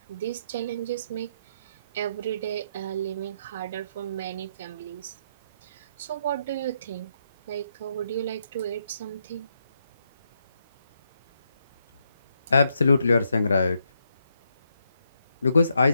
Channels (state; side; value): inverted; both; correlation -0.79